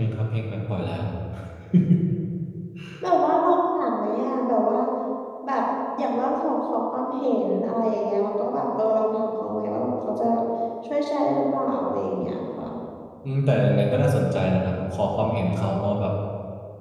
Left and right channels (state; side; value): identical; both; correlation 1.00